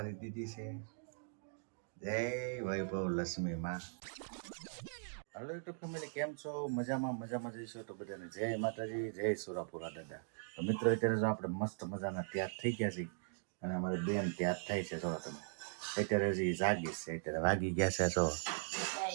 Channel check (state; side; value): silent; left; digital silence